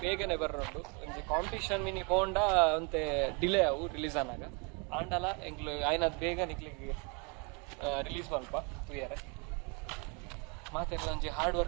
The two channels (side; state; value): left; quieter; 33.1 dB